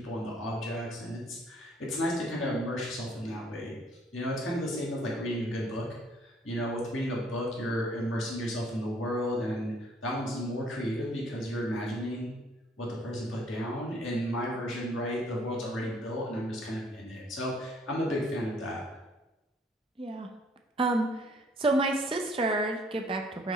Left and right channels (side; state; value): both; normal; correlation 0.62